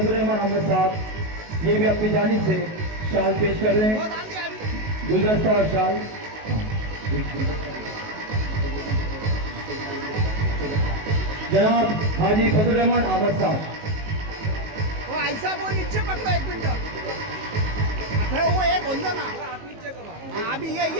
रहमान अहमद साहब ये भी अपनी जानिब से शाल पेश कर रहे हैं, गुलदस्ता और शाल। जनाब हाजी फजल रहमान अहमद साहब, वो ऐसा वो नीचे पकड़ो 1 मिनट। अरे वो एक होंगे ना, हाँ, अभी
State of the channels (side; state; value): left; late; 19 ms